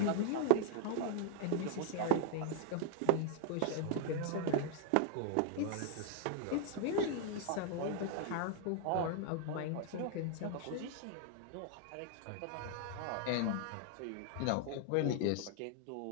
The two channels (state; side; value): different; both; correlation 0.00